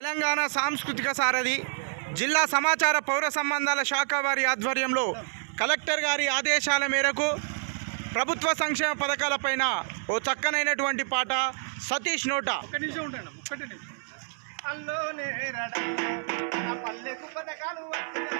తెలంగాణ సాంస్కృతిక సారథి జిల్లా సమాచార పౌర సంబంధాల శాఖ వారి ఆధ్వర్యంలో కలెక్టర్ గారి ఆదేశాల మేరకు ప్రభుత్వ సంక్షేమ పథకాలపైన ఓ చక్కనైనటువంటి పాట సతీష్ నోట. అల్లోనే రడ నా పల్లెకు పథకాలు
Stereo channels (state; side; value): silent; left; 58 dB below the other